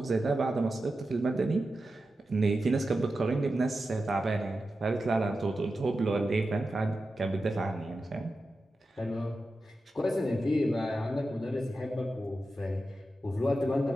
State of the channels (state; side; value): normal; both; correlation 0.91